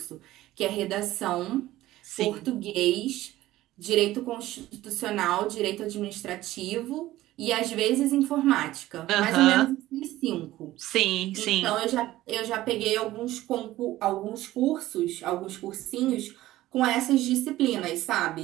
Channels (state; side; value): quieter; left; 15.8 dB